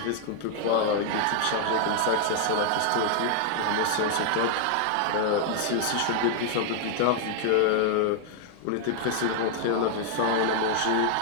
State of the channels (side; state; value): both; different; correlation 0.00